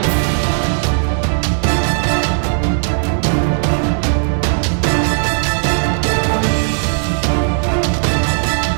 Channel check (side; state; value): left; silent; digital silence